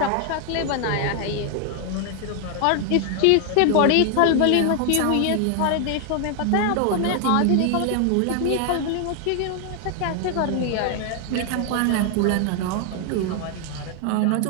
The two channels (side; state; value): both; different; correlation 0.00